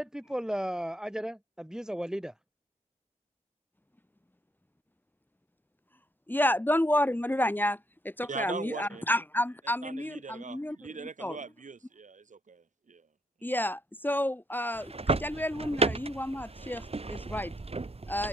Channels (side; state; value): both; normal; correlation 0.74